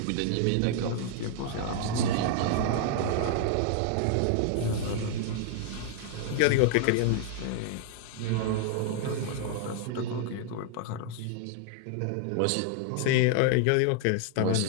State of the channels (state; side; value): different; both; correlation 0.00